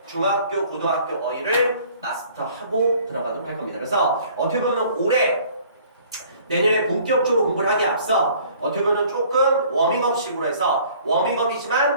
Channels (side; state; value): both; inverted; correlation -0.54